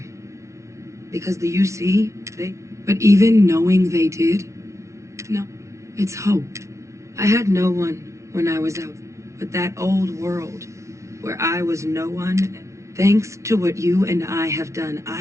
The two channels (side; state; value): left; late; 0.14 ms